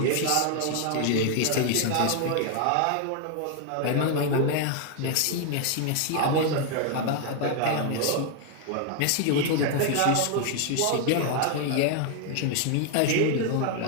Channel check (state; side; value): different; both; correlation 0.00